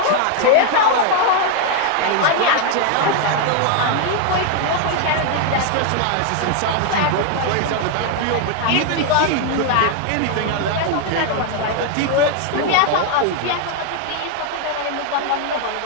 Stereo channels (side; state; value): both; different; correlation 0.01